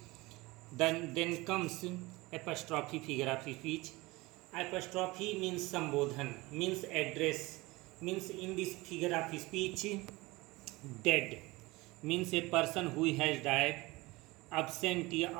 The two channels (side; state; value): left; quieter; 21.8 dB